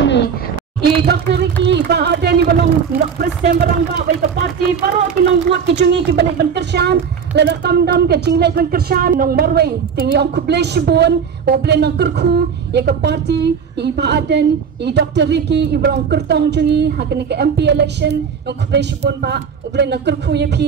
I Dr. Ricky ba ada ni balong presiden barang ba baik ke parti baru ki nong buat ki cungi ki balik ban kersan la tam dam ke cinglai ban kersan nong marwai tingi ong kublai shibun o blai nong kerku ya ke parti I ba aden I Dr. Ricky I balong kertong cungi hakini ke MP election nong kublai shibun ba o blai nong kerku ya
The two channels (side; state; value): left; quieter; 6.8 dB